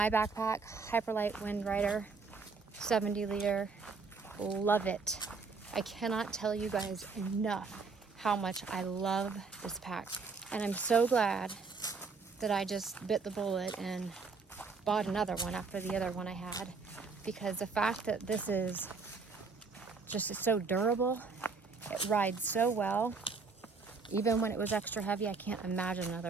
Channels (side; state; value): left; quieter; 4.6 dB